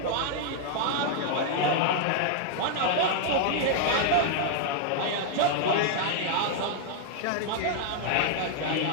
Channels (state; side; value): different; both; correlation 0.00